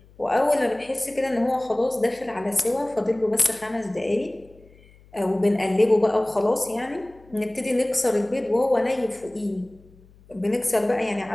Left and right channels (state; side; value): noise; left; hum, 26 dB below the sound